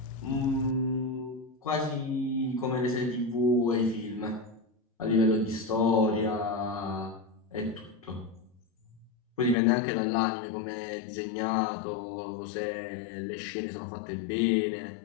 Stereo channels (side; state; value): right; drops out; at 9.6 s